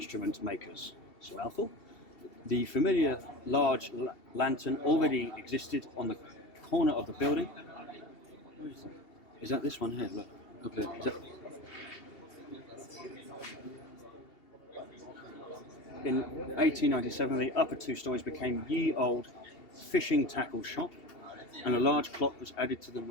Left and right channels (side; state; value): right; late; 2.7 ms